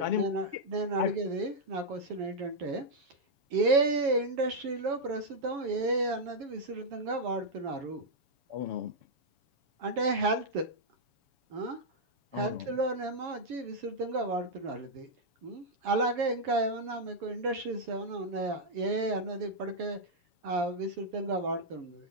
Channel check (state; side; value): late; left; 7.2 ms